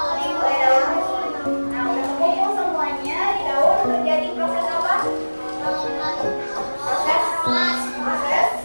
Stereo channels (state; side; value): inverted; both; correlation -1.00